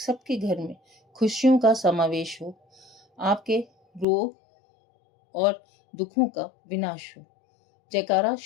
घर में खुशियों का समावेश हो, आपके रोग और दुखों का विनाश हो। जयकारा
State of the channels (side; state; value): right; drops out; at 4.0 s